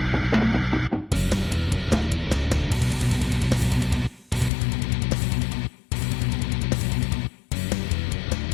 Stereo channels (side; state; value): right; drops out; at 4.5 s